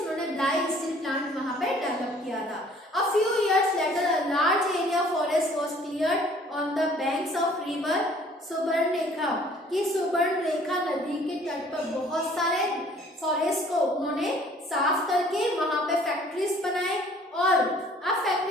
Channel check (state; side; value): normal; both; correlation 0.55